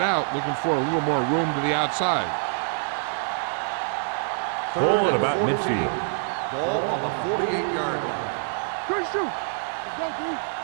out, looking for a little more room to the outside. Ball at about midfield. Ball on the 48-yard line. Good shoot. Let's go, dude.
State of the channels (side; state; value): left; silent; digital silence